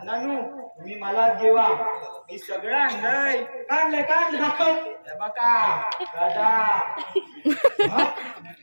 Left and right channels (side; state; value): both; inverted; correlation -1.00